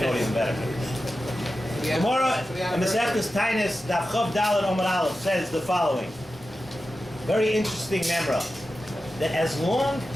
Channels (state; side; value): normal; both; correlation 0.92